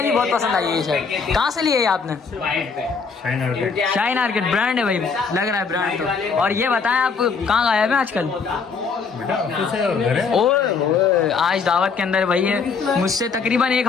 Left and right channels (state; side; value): quieter; right; 5.3 dB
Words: बहुत पसंद आई है ये शर्ट। कहाँ से ली है ये आपने? शाइन आर्केड ब्रांड है भाई, लग रहा है ब्रांड तो। और ये बताएं आप कहाँ गायब हैं आजकल? ओए आज दावत के अंदर भाई है, मुझसे तकरीबन 1